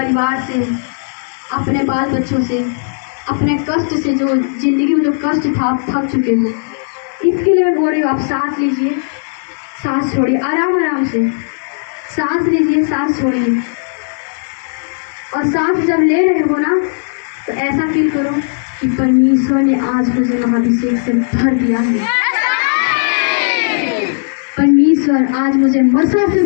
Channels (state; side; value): silent; right; digital silence